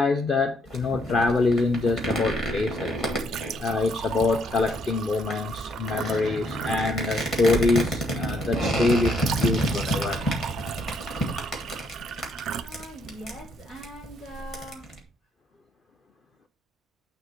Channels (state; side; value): normal; both; correlation 0.71